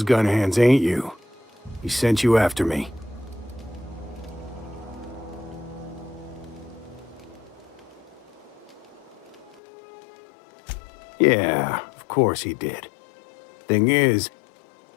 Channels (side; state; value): right; drops out; at 9.6 s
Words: gun hands, ain't you? He sent you after me. Yeah, of course he did. Thing is,